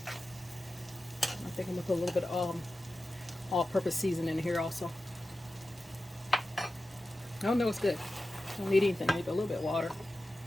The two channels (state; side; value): normal; both; correlation 0.93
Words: I think I'm gonna put a little bit of all-purpose seasoning in here also. Oh no, it's good. Don't need anything. Maybe a little bit of water.